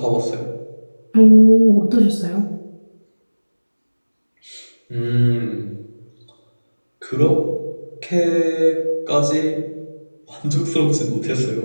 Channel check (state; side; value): inverted; both; correlation -1.00